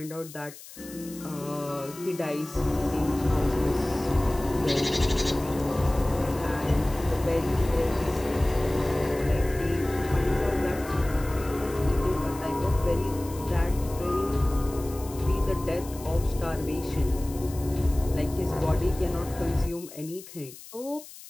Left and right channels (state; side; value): noise; left; hiss, 17 dB below the sound